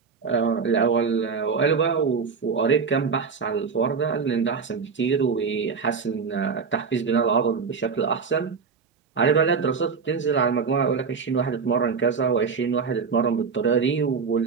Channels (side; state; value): left; quieter; 5.5 dB